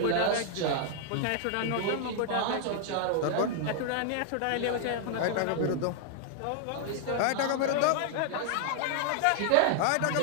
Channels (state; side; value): different; both; correlation -0.01